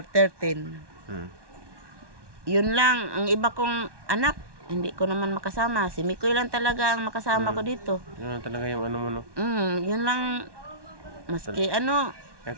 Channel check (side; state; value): left; late; 1.2 ms